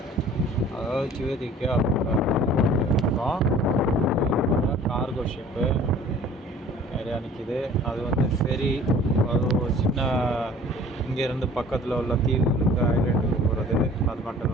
அதாவது சிவதிக்கா இருக்கோம். கார்கோ ஷிப்பு நிறையா நிற்கிது. அது வந்து ஃபெரி, அது ஒரு சின்ன இங்கேருந்து பக்கத்தில் உள்ள தீவுகளுக்கு ஐலேண்டுக்கு போகிறது. அது மட்டும்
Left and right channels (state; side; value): normal; both; correlation 0.48